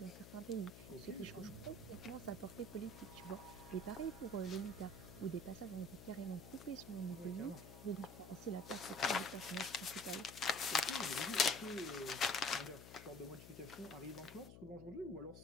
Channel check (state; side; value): noise; left; hum, 14 dB below the sound